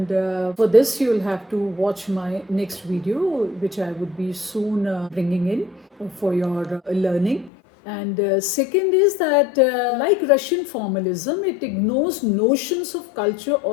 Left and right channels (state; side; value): drops out; right; at 7.5 s